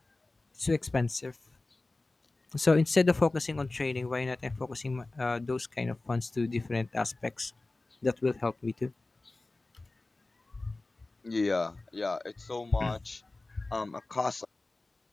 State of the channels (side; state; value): right; quieter; 3.1 dB